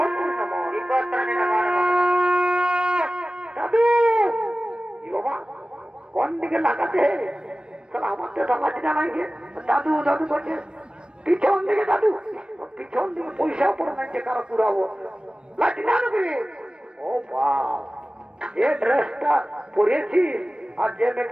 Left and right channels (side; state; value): left; late; 0.054 ms